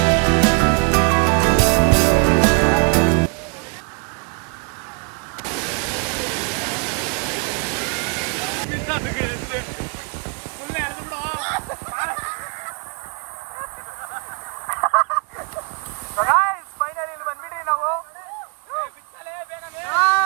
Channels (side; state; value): left; quieter; 36.3 dB